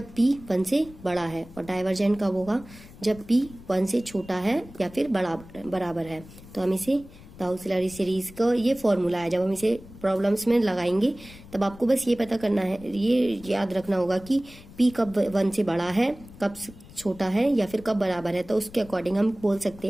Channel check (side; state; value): left; noise; rumble, 19 dB below the sound